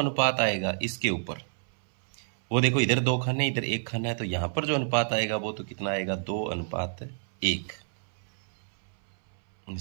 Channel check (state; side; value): silent; left; 59 dB below the other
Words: आएगा इसके ऊपर, वो देखो इधर 2 खाने इधर 1 खाना है, तो यहां पर जो अनुपात आएगा वो तो कितना आएगा, 2:1।